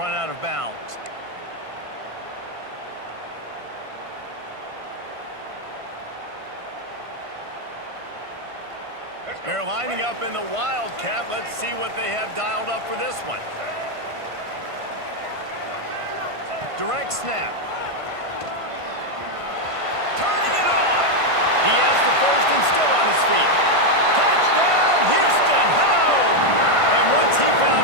out of bounds. They're lining up in the Wildcat. Let's see what they have dialed up for this one. Direct snap. Turning it on. He has the first and still on his feet. Touchdown, Houston! Hello! And once he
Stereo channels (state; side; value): late; left; 1.5 ms